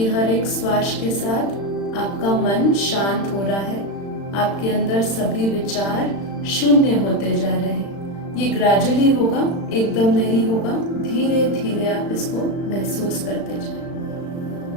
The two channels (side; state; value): right; late; 35 ms